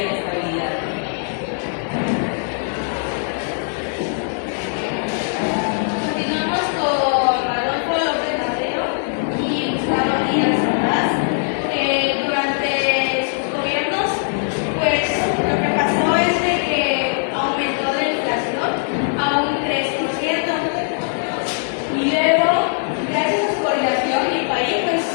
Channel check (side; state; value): right; silent; 56 dB below the other